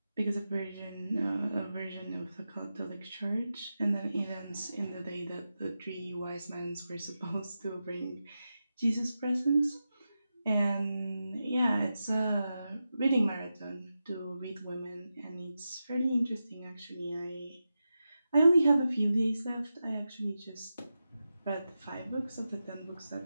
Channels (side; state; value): both; inverted; correlation -0.91